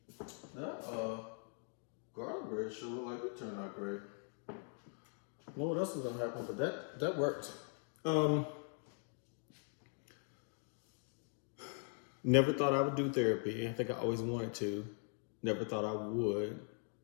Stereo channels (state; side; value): silent; right; 51 dB below the other